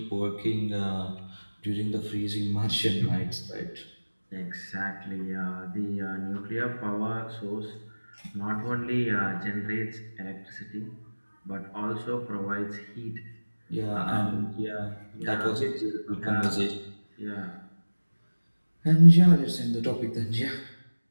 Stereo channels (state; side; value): inverted; both; correlation -1.00